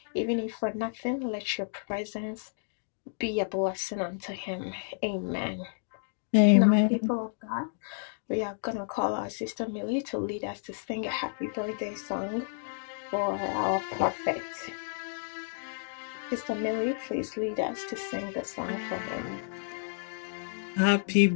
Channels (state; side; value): silent; right; digital silence